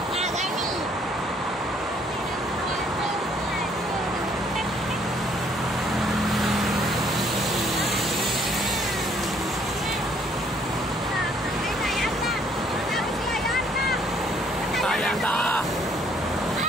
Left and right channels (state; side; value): normal; both; correlation 0.64